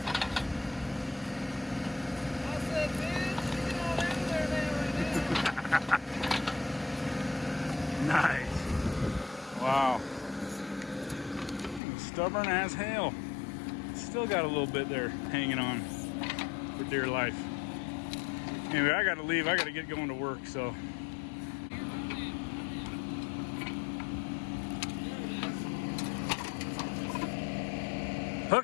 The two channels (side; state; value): right; drops out; at 11.8 s